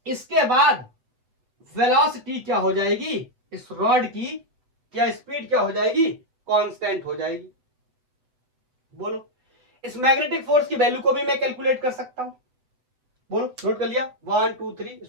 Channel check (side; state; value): left; late; 7.7 ms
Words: इसके बाद वेलोसिटी क्या हो जाएगी, इस रॉड की क्या स्पीड क्या हो जाएगी, कांस्टेंट हो जाएगी। बोलो, इस मैग्नेटिक फोर्स की वैल्यू को भी मैं कैलकुलेट कर सकता हूं। बोलो, नोट कर लिया, 1 2 3,